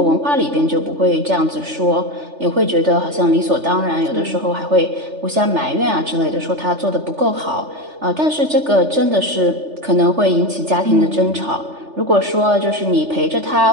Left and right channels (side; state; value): left; late; 3.4 ms